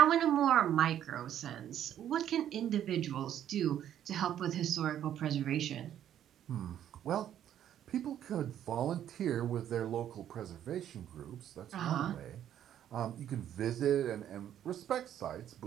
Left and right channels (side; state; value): left; quieter; 10.6 dB